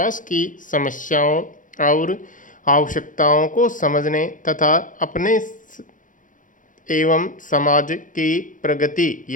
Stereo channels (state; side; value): late; right; 0.38 ms